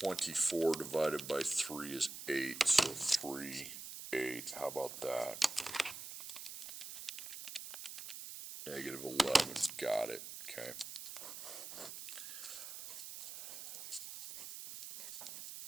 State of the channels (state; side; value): noise; right; hiss, 9 dB below the sound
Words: divided by 3 is 8, so 3, 8, how about that? Negative 11, got it, okay.